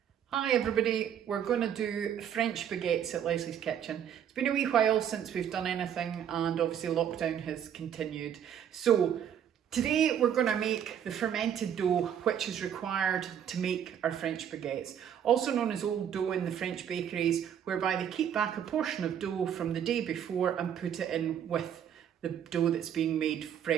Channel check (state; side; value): quieter; left; 9.2 dB